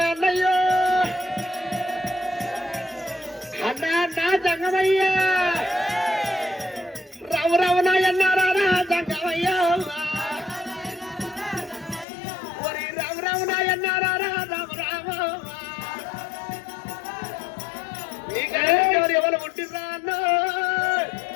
అన్నయ్యో అన్నా అన్నా సంగమయ్యా రావు రావునా ఎన్నారా సంగమయ్యా ఒరి రావు రావునా ఎన్నారా రాము రాము ఎవరు పుట్టిరా అన్న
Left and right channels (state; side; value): drops out; right; at 12.1 s